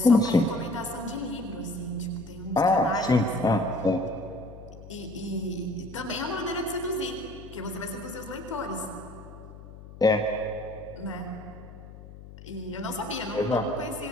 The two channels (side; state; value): left; noise; hum, 16 dB below the sound